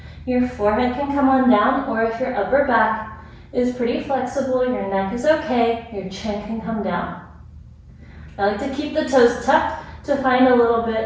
Your forehead can come on down, or if your upper back is pretty flexible, your neck is okay, your chin can come down. I like to keep the toes tucked to find a little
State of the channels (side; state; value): both; identical; correlation 1.00